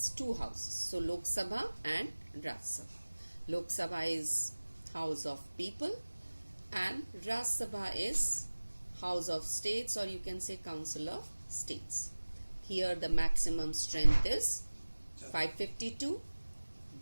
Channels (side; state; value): both; inverted; correlation -1.00